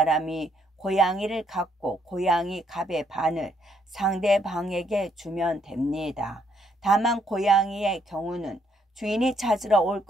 고양이를 갖고 고양이 값의 반을 상대방에게 주면 됩니다. 다만 고양이의 경우는 주인이 찾으러 올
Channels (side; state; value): both; normal; correlation 0.71